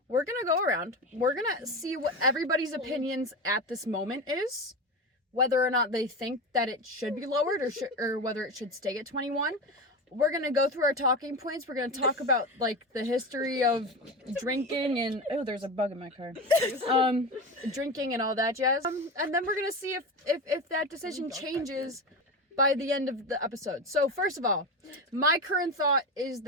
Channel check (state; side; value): normal; both; correlation 0.22